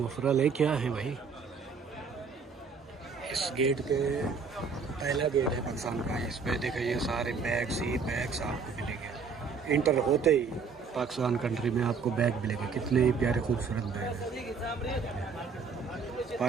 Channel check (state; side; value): quieter; left; 5.3 dB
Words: है, क्या है भाई। इस गेट के पहला गेट है पाकिस्तान का। इस पे देखिए ये सारे बैग्स ही बैग्स आपको मिलेंगे। इंटर होते ही पाकिस्तान कंट्री में आपको बैग मिलेंगे, कितने ही प्यारे खूबसूरत बैग हैं।